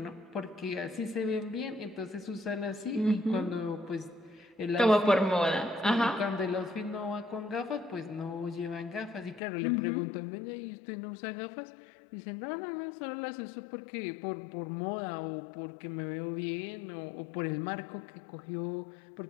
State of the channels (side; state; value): right; drops out; at 9.4 s